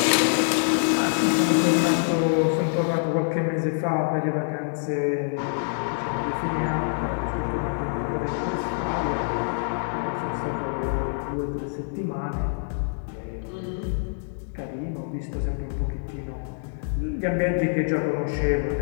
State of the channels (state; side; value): silent; right; digital silence